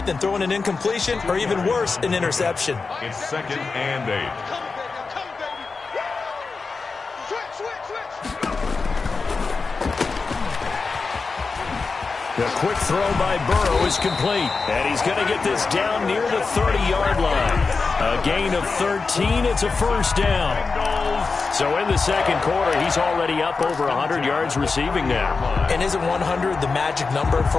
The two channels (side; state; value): right; quieter; 4.4 dB